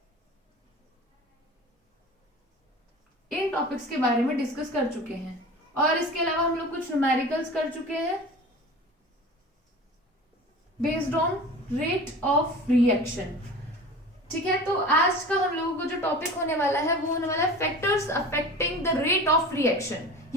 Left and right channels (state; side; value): normal; both; correlation 0.37